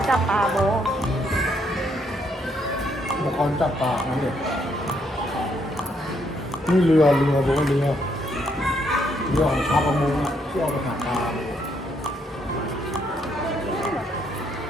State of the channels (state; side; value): normal; both; correlation 0.73